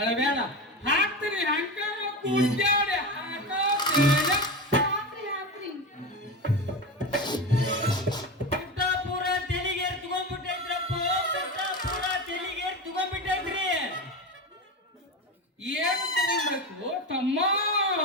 ಹಾಕ್ತೀನಿ ಹಂಗಾರ ಕೂಡ್ಯಾಡಿ ಹಾಕೋದೇನ ಹಾಕ್ರಿ ಹಾಕ್ರಿ ಪುಟ್ಟಾಪುರ ತೆಲಿಗೆ ತಗೊಂಡ್ಬಿಟ್ಟೈತ್ರಪ್ಪ ಪುಟ್ಟಾಪುರ ತೆಲಿಗೆ ತಗೊಂಡ್ಬಿಟ್ಟೈತ್ರಿ ಏನ್ ತಗೊಳ್ಬೇಕು ತಮ್ಮ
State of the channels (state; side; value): normal; both; correlation 0.22